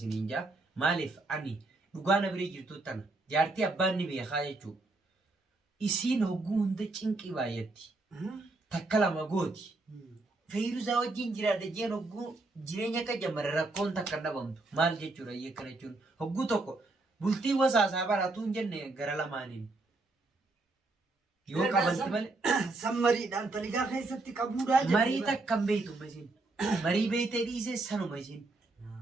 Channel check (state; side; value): quieter; left; 3.2 dB